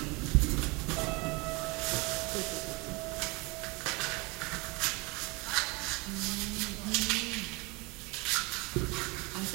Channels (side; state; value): left; quieter; 26.7 dB